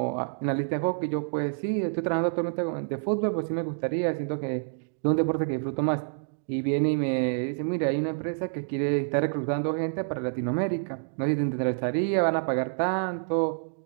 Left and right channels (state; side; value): silent; left; digital silence